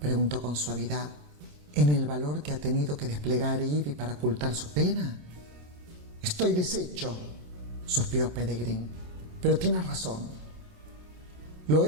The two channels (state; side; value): late; left; 27 ms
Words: preguntó con suavidad, en el valor que ha tenido que desplegar Ivy para ocultar su pena? Estoy deshecho, suspiró Peregrine, pero tienes razón. Lo